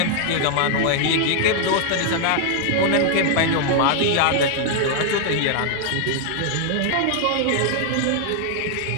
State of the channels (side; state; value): both; different; correlation 0.00